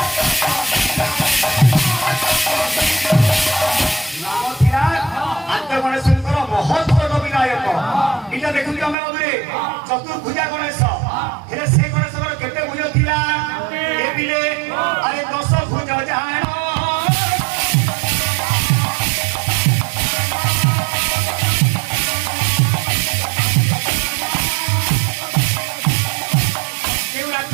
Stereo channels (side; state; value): left; drops out; at 9.0 s